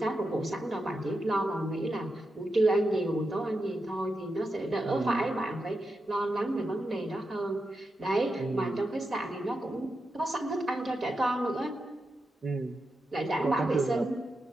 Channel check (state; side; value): normal; both; correlation 0.88